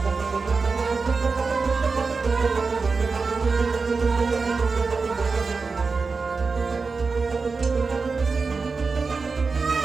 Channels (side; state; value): left; quieter; 4.5 dB